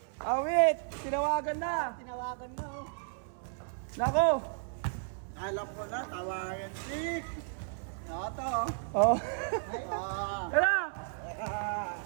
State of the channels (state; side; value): silent; left; 55 dB below the other